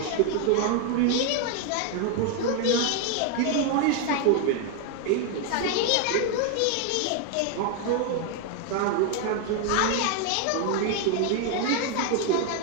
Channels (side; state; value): both; different; correlation 0.01